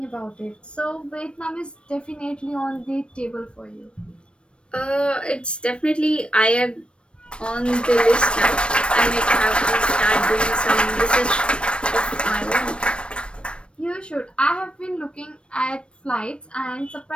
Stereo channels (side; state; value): right; late; 0.058 ms